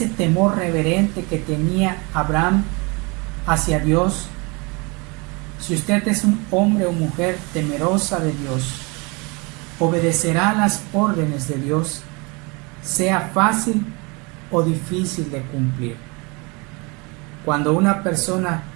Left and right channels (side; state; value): left; quieter; 28.7 dB